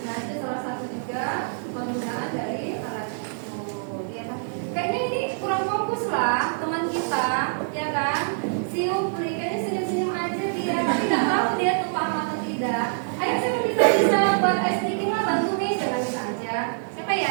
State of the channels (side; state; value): left; silent; 59 dB below the other